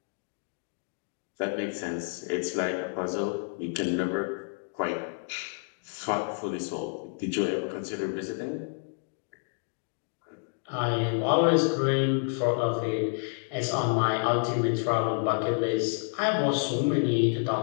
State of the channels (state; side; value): silent; right; 58 dB below the other